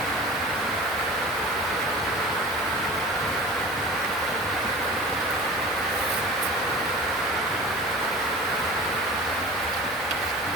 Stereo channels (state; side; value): normal; both; correlation 0.38